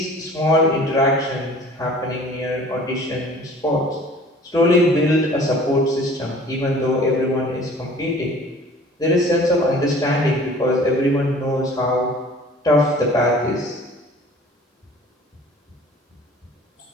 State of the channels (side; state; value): both; normal; correlation 0.48